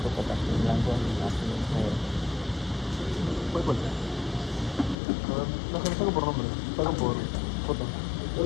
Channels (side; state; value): right; drops out; at 5.0 s